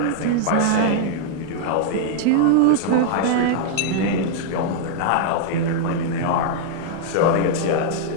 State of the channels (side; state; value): both; different; correlation -0.01